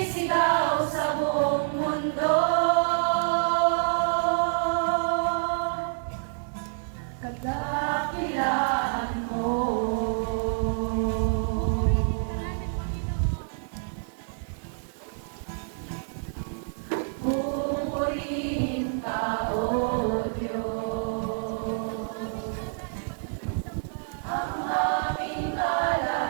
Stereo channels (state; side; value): silent; left; digital silence